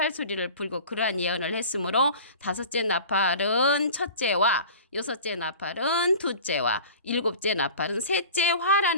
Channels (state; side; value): inverted; both; correlation -0.40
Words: 소리를 불고 그러한 예언을 했으므로 다섯째 나팔은 첫째와 여섯째 나팔은 둘째와 일곱째 나팔은 셋째